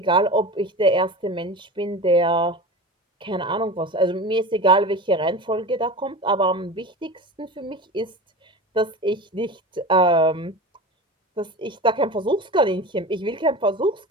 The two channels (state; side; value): normal; both; correlation 0.30